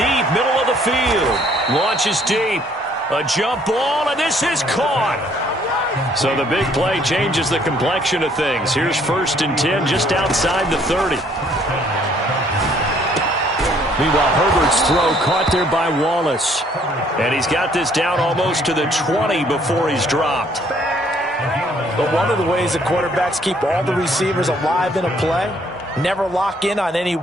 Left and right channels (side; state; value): both; normal; correlation 0.63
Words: middle of the field. Launches deep. A jump ball, and this is caught. So the big play changes the complexion of things. Here's 1st and 10 just outside the 30. Meanwhile, Herbert's throw caught there by Wallace. And he's got this down almost to the 20 before he's dropped. But one of the ways that quarterbacks keep all the receivers alive in a play, never lock in on any